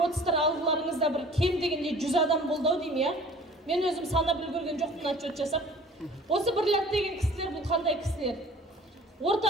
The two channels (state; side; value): normal; both; correlation 0.49